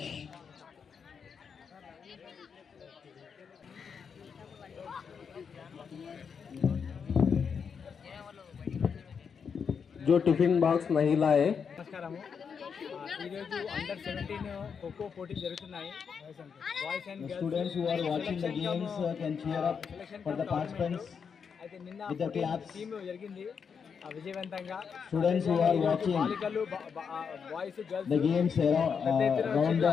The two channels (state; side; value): quieter; right; 6.4 dB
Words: जो टिफिन बॉक्स नहीं लाए నమస్కారము. ఈరోజు అండర్ 17 ఖోఖో పోటీ జరుగుతున్నాయి. Boys and girls students who are watching the games can cheer up for the participants అయితే నిన్న with the claps. Team జరిగింది. విజయవంతంగా Students who are watching బాలికలు boys girls the games around